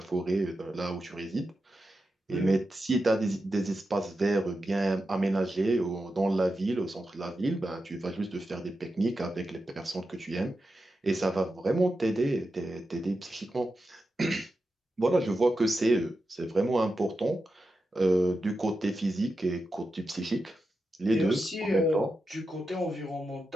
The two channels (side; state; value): both; normal; correlation 0.90